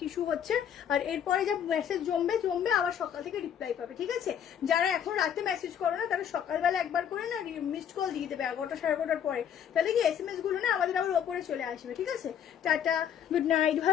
ইস্যু হচ্ছে। আর এরপরে যা মেসেজ জমবে আবার সকাল থেকে রিপ্লাই পাবে, ঠিক আছে? যারা এখন রাতে মেসেজ করো না, তারা সকালবেলা একবার করে না মিসড কল দিয়ে দেবে 11টা 11:30 পরে, তাহলে কি SMS গুলো না আমাদের আবার ওপরে চলে আসবে, ঠিক আছে? টাটা, গুড নাইট,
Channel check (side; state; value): right; quieter; 8.9 dB